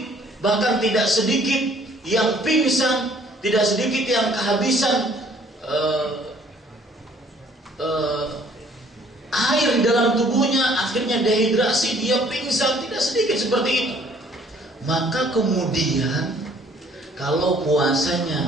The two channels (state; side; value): normal; both; correlation 0.59